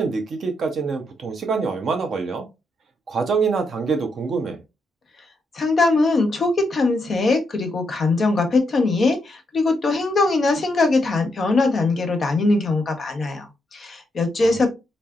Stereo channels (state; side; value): normal; both; correlation 0.80